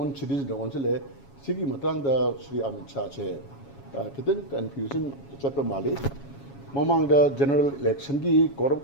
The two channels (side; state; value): right; late; 7.2 ms